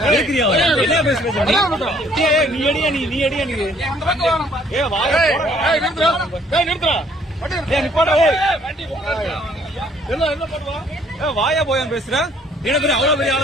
என்ன பேசுற? நீ அடியா நீ வாயா போயான்னு பேசுற? என்ன பெரிய அவ்வளவு பெரிய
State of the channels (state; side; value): normal; both; correlation 0.62